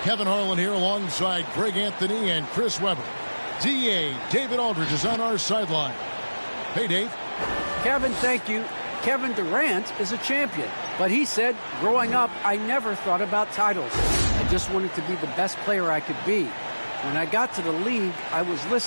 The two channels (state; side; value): inverted; both; correlation -1.00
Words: Kevin Harlan here alongside Greg Anthony and Chris Webber. DA David Aldridge is on our sideline. Hey, Dave. Kevin, thank you. Kevin Durant is a champion, but he said, growing up, I never thought about titles. I just wanted to be the best player I could be. When I got to the league, I was